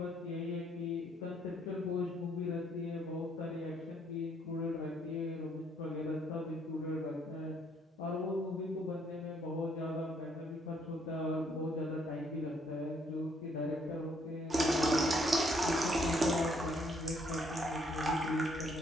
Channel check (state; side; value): normal; both; correlation 0.68